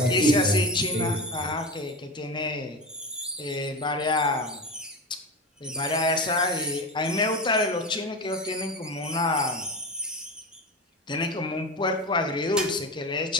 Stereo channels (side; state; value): both; normal; correlation 0.23